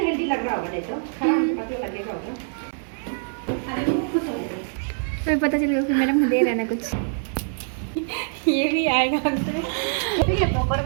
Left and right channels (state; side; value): silent; left; digital silence